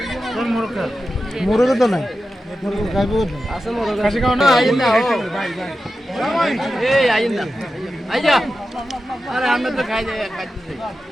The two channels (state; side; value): normal; both; correlation 0.92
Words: কোন মোরগ খা মোরগ তো নাই মোরগ খাইবো আছে মোরগ কাশি খাও না আইন না ভাই ভাই এই আইন না আইজা আরে আমরা তো খাই যাই খাইতে